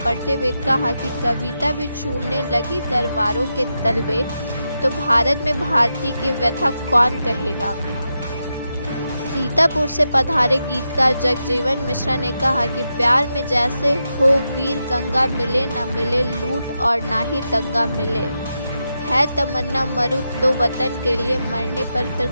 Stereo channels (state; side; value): inverted; both; correlation -0.87